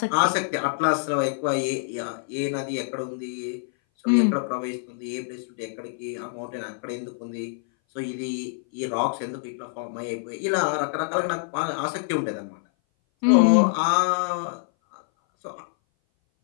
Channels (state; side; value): silent; right; 58 dB below the other